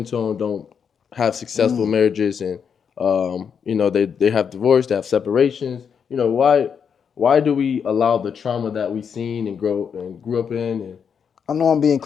tone don't have successful Mm. marriages, and they have divorce, they have separations? Why do we allow the trauma that we seen and grew up in? And I know I'm being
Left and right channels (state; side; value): quieter; right; 7.0 dB